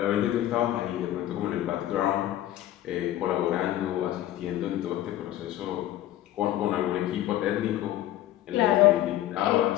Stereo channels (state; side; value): quieter; right; 13.5 dB